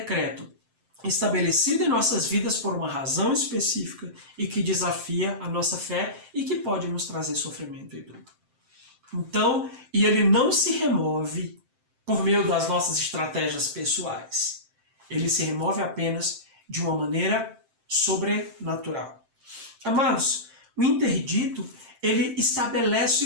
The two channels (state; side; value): late; left; 7.7 ms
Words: estabelecido em nossas vidas por uma razão específica e que desafia a nossa fé e que pode nos trazer sofrimento e dor. Então, e ele não se remove por meio das nossas estratégias pessoais. Ele se remove apenas de uma maneira sobrenatural. Amados, o interdito, ele estabelece